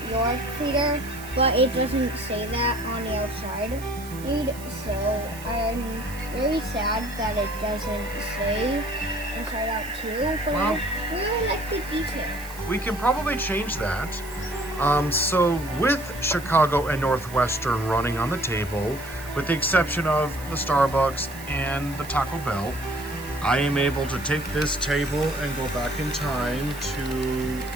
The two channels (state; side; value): noise; right; hiss, 17 dB below the sound